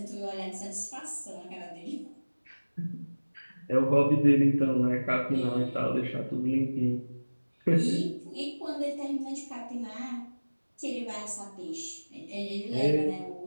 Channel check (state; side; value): inverted; both; correlation -1.00